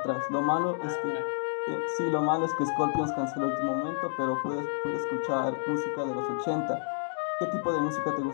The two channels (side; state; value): right; silent; digital silence